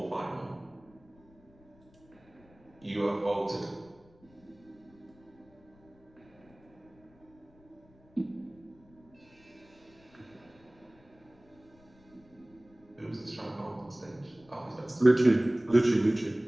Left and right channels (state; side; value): noise; left; rumble, 27 dB below the sound